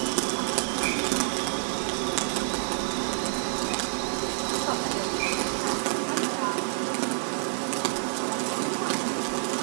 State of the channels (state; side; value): silent; left; 59 dB below the other